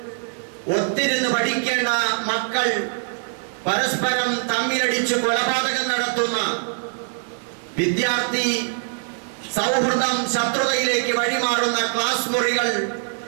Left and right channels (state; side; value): silent; left; digital silence